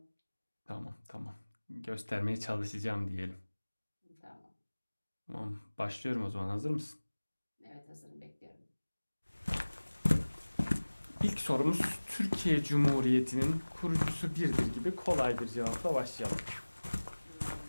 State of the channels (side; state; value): both; inverted; correlation -1.00